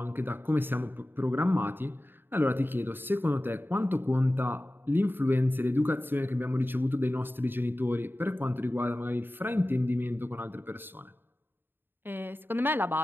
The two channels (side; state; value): left; late; 0.099 ms